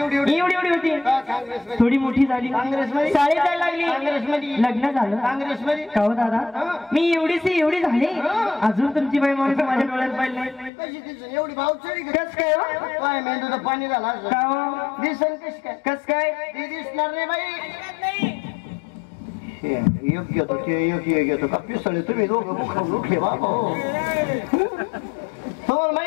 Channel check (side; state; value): right; drops out; at 10.7 s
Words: एवढी एवढी एवढी होती काँग्रेसमध्ये थोडी मोठी झाली काँग्रेसमध्ये? शाळेत जायला लागली काँग्रेसमध्ये? लग्न झालं काँग्रेसमध्ये का हो दादा मी एवढीशी एवढी झाली अजून तुमची बाई माणूस माझ्या डोळ्यात पाहिलं नाही कशी दिसून एवढी भावचडी कस काय हो? काय मेंदूचं पाणी झाला का हो? दिसन कस काय कस काय ती दिसणार नाही बाई योग्य होतो ते योग्य घेतो का पिसळे तुम्ही दोघं मुखावर उठले बाबा तुम्हाला